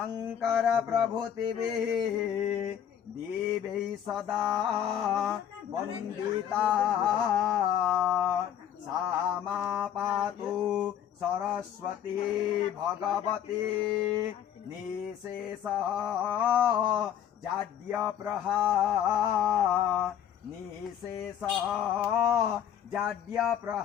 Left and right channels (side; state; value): right; quieter; 9.7 dB